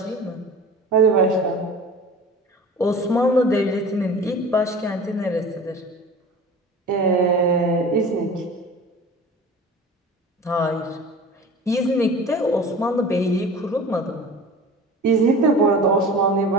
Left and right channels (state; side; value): normal; both; correlation 0.39